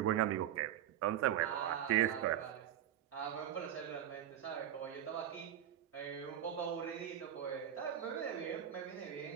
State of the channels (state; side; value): quieter; left; 10.7 dB